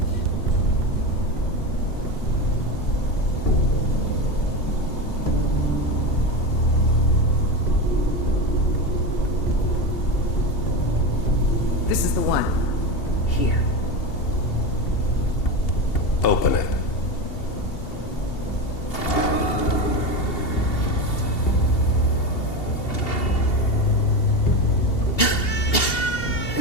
This is the one. Here. Open it.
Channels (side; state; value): right; late; 2.8 ms